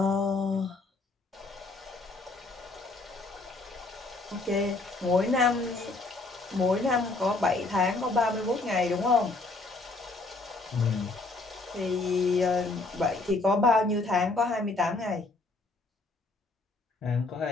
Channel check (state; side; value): quieter; right; 3.3 dB